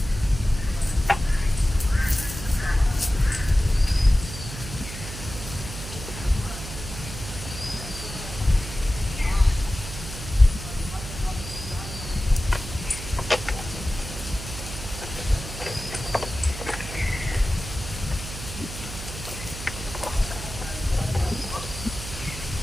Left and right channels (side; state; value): right; noise; hum, 9 dB below the sound